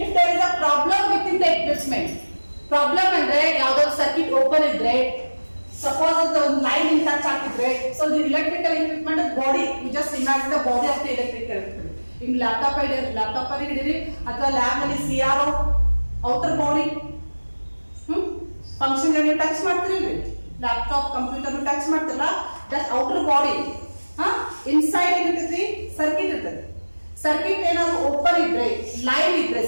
if there is a problem within the equipment, problem ಅಂದ್ರೆ ಯಾವ್ದಾದ್ರು ಸರ್ಕ್ಯೂಟ್ ಓಪನ್ ಇದ್ರೆ, suppose the line in touch ಆಗ್ತಿದ್ರೆ, so the electrical equipment body, you just imagine the body of the electrical equipment. In laptop ಅಲ್ಲಿ ಹಿಡಿರಿ ಅಥವಾ ಲ್ಯಾಬ್ ನಲ್ಲಿ CRO outer body function ನೀವು touch ಮಾಡ್ತಿರಲ್ರಿ, ಲ್ಯಾಪ್ಟಾಪ್ ಕಂಪ್ಯೂಟರ್ ಟಚ್ ಮಾಡ್ತಿರಲ್ಲ, that outer body inside ಏನಿರ್ತೈತಿ circuit ಇರ್ತದೆ. ಸರ್ಕ್ಯೂಟ್ ಏನಾದ್ರು ಓಪನ್ ಇದ್ರೆ, ಲೈವ್ ಇದ್ರೆ,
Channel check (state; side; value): inverted; both; correlation -1.00